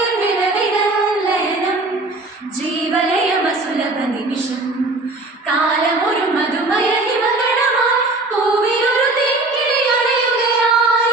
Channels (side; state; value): left; quieter; 3.1 dB